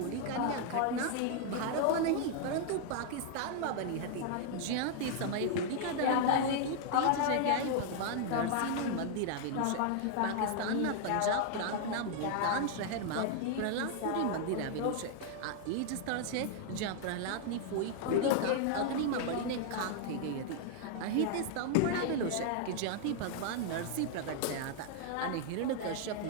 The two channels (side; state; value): both; different; correlation 0.00